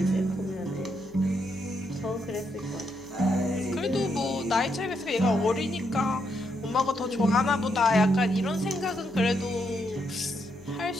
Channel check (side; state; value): left; noise; hum, 28 dB below the sound